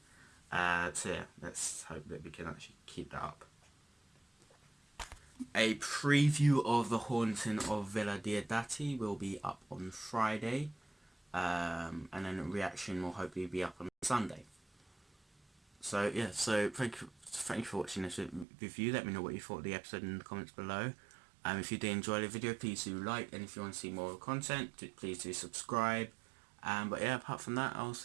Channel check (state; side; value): drops out; left; at 18.4 s